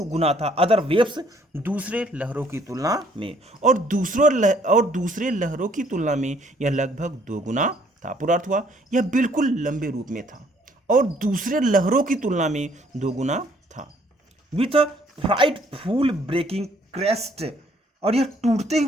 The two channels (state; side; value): normal; both; correlation 0.63